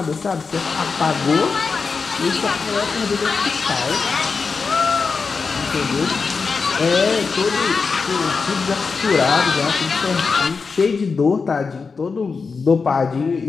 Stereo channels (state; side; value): quieter; right; 4.9 dB